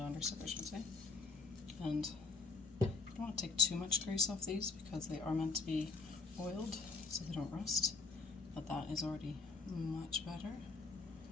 soap I should say. And I don't want to take too much grease off these because they are meant to be oiled so they don't rust, but that is already much better.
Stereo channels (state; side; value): quieter; right; 4.0 dB